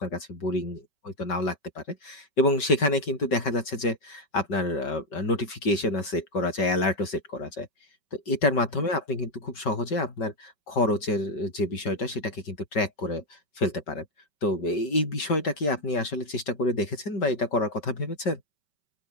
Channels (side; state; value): right; late; 5.2 ms